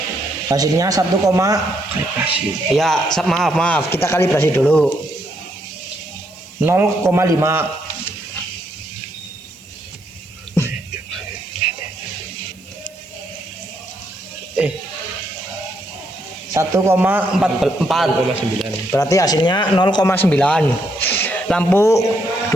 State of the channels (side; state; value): right; noise; hiss, 29 dB below the sound